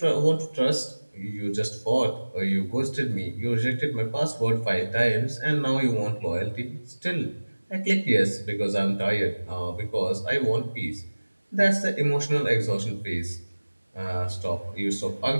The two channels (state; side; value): inverted; both; correlation -1.00